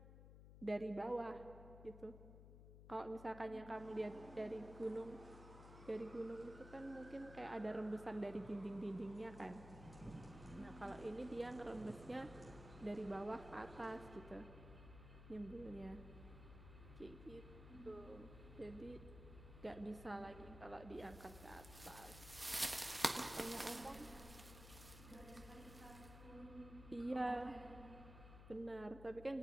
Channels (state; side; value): noise; left; hum, 12 dB below the sound